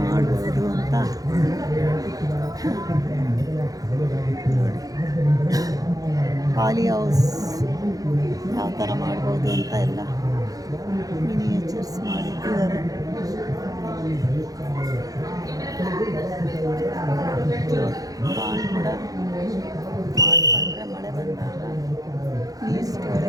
ಮಾಡ್ಬೋದು ಅಂತ ನೋಡಿ. ಪಾಲಿ ಹೌಸ್ ಯಾವ ಥರ ಮಾಡ್ಬೋದು ಅಂತ ಎಲ್ಲ ಮಿನಿಯೇಚರ್ಸ್ ಮಾಡಿಟ್ಟಿದ್ದಾರೆ. ಪಾಂಡ್ ಕೂಡ ಮಾಡಿಕೊಂಡ್ರೆ ಮಳೆ ಬಂದಾಗ ನೀರು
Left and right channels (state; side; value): late; left; 0.17 ms